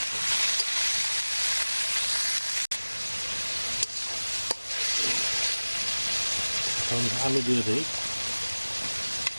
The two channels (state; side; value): inverted; both; correlation -1.00